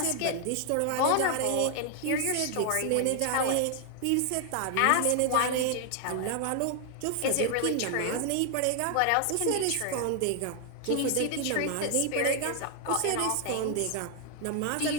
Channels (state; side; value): different; both; correlation 0.00